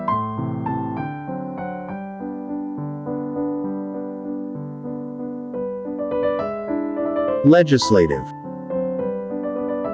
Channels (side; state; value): both; identical; correlation 1.00